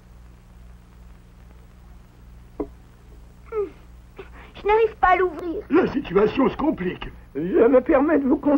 Je n'arrive pas à l'ouvrir. La situation se complique. Je me permets de vous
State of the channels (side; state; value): both; identical; correlation 1.00